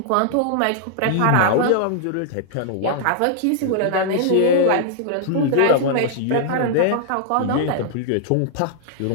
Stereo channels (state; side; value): different; both; correlation -0.01